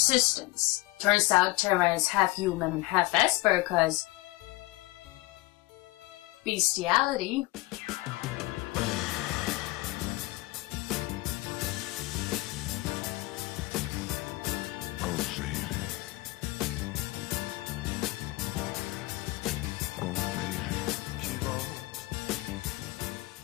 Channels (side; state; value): right; quieter; 20.3 dB